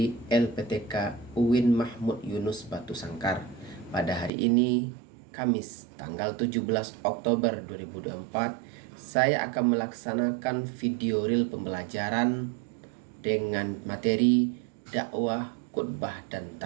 LPTK UIN Mahmud Yunus Batu Sangkar. Pada hari ini, Kamis tanggal 17 Oktober 2024, saya akan melaksanakan video reel pembelajaran dengan materi dakwah, khutbah, dan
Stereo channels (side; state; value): left; drops out; at 4.3 s